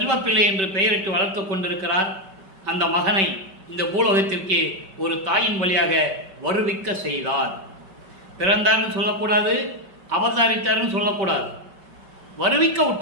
என்று பெயரிட்டு வளர்த்து கொண்டிருக்கிறார். அந்த மகனை இந்த பூலோகத்திற்கு ஒரு தாயின் வழியாக வருவிக்க செய்தார். பிறந்தார்னு சொல்லக்கூடாது, அவதாரித்தார்னு சொல்லக்கூடாது. வருவிக்க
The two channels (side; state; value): left; late; 5.2 ms